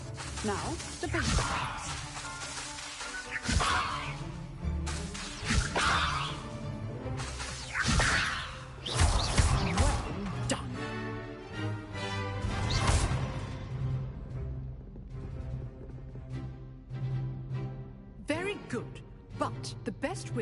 Now, the basic cast. Well done. Very good. But the best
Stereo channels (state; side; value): identical; both; correlation 1.00